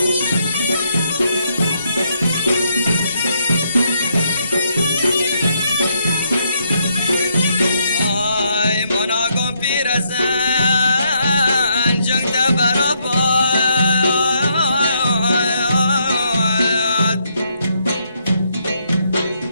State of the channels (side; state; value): both; inverted; correlation -0.75